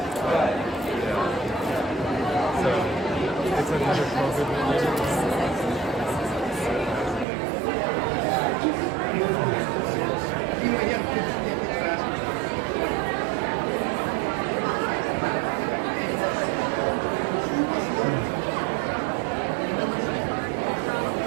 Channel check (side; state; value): left; drops out; at 7.2 s